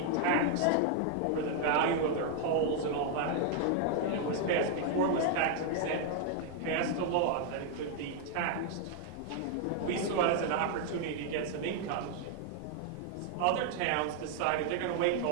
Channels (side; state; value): both; different; correlation 0.00